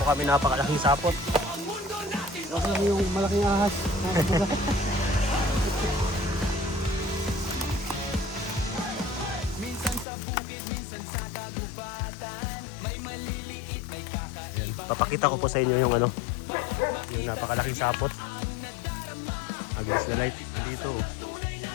kami napakalaking sapot. Kasi lang yung malaking ahas mga kabuga. Minsan sa bukid, minsan sa kagubatan. May maliliit, may kakaiba. Papakita ko po sa inyo yung yung napakalaking sapot. Against the light. Andito.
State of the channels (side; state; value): right; drops out; at 10.1 s